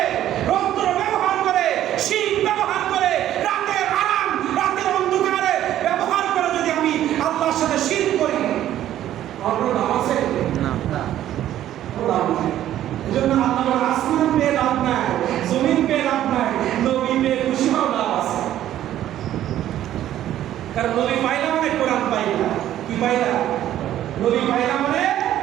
রৌদ্র ব্যবহার করে, শীত ব্যবহার করে, রাতের আরাম, রাতের অন্ধকারে ব্যবহার করে যদি আমি আল্লাহর সাথে শিরক করি, আমার লাভ আছে না। লাভ নাই। এজন্য আল্লাহ আসমান পেয়ে লাভ নাই, জমিন পেয়ে লাভ নাই, নবী পেয়ে খুশি হওয়া লাভ আছে। কারণ নবী পাইলা মানে কোরআন পাইলা। কি পাইলা? নবী পাইলা মানে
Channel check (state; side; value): quieter; left; 12.3 dB